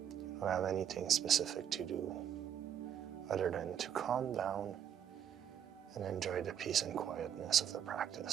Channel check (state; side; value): quieter; left; 9.1 dB